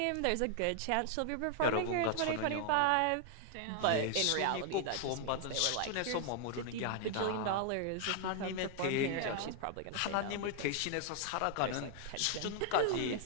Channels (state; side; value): different; both; correlation 0.00